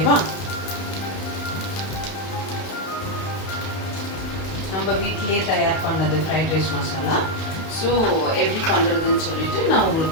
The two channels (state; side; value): late; right; 31 ms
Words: நம்ம வீட்டிலேயே தயார் பண்ணது ஃப்ரைட் ரைஸ் மசாலா. ஸோ எப்படி பண்ணுறதுன்னு சொல்லிட்டு நான்